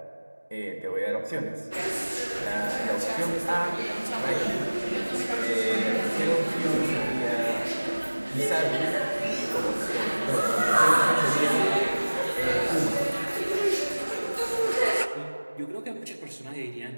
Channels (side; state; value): both; inverted; correlation -1.00